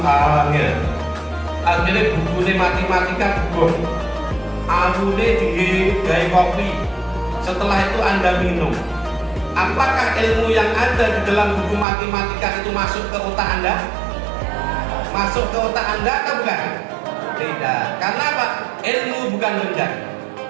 awalnya, akhirnya bukunya matematika bukuh, awalnya digawe kopi, setelah itu Anda minum. Apakah ilmu yang ada di dalam buku matematika itu masuk ke otak Anda? Masuk ke otak Anda atau bukan? Tidak. Karena apa? Ilmu bukan benda.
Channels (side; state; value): left; drops out; at 11.9 s